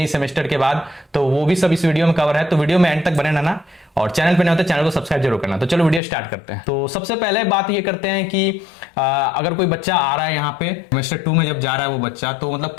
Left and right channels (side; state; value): right; drops out; at 6.0 s